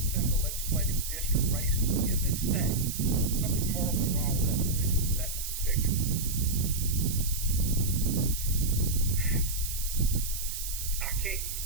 of the legislative district races in this state. Something horribly wrong with that decision, with that picture. I can't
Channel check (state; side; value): noise; right; hiss, 6 dB below the sound